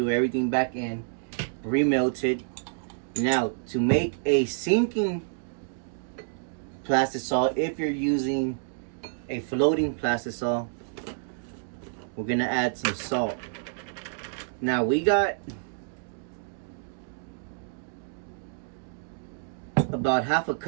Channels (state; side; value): silent; left; digital silence